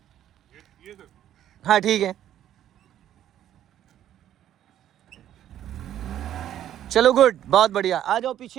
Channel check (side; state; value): left; quieter; 11.3 dB